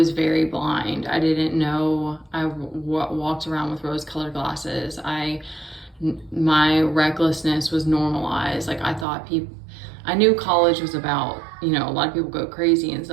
very blind. I didn't know. Walked around with rose-colored glasses. My recklessness was normalized. Like, I knew college was about, a lot of people go crazy and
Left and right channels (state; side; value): drops out; left; at 9.1 s